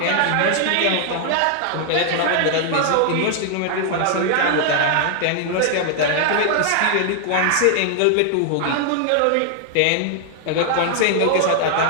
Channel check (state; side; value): different; both; correlation 0.00